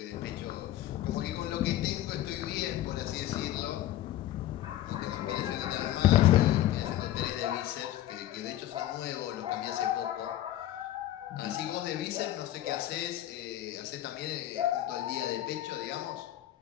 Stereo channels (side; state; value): right; quieter; 13.5 dB